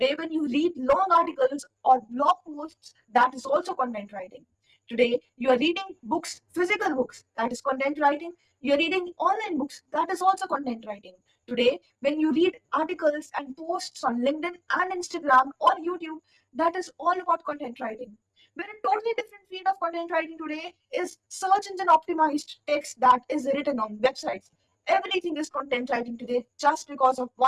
when you read long articles or blog posts, that is also content writing. Today, you are reading books, physical books, that is content writing. You are reading online books, that is also content writing. Today, when you read articles and posts on LinkedIn and Instagram or YouTube, that is all about content writing. But a totally different field of content writing today is search engine optimized text that is written on websites. Everything is content writing today just because of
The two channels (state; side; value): identical; both; correlation 1.00